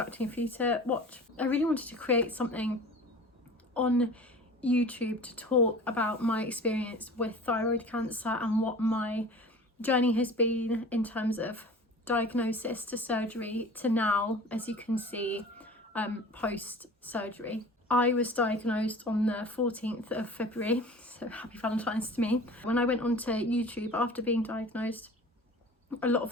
for you to watch. I really wanted to create something on YouTube to talk about my experience with thyroid cancer and what my journey has been in terms of diagnosis to surgery to now, as you can see, post surgery. I was diagnosed on the 14th of February, so happy Valentine's to me. When I went onto YouTube after being diagnosed, a lot of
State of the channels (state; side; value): normal; both; correlation 0.40